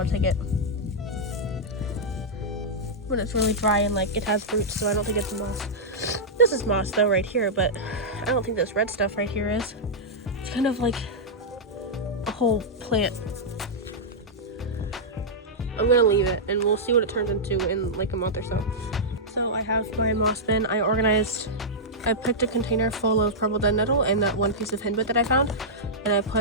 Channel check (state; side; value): normal; both; correlation -0.10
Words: to take it. When it's really dry and like it has roots, so I don't think it's moss. This is moss though right here, but I don't think this red stuff right here is. It's kind of like a whole plant. I'm gonna leave it and we'll see what it turns into in like a month or so. So I have my moss bin. I picked a container full of purple dead nettle and that one piece of henbit that I found, and I